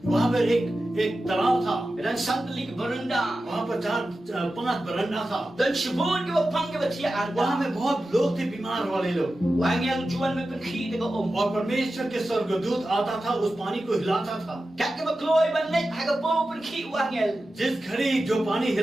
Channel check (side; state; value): both; normal; correlation 0.93